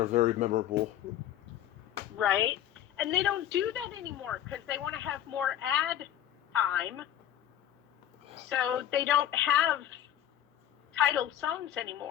very memorable. Right? And they don't do that anymore because they want to have more ad time. So they don't have titled songs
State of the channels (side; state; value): right; quieter; 11.4 dB